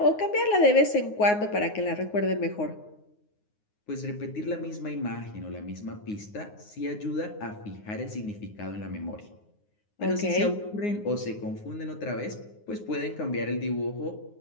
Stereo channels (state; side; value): late; right; 9.6 ms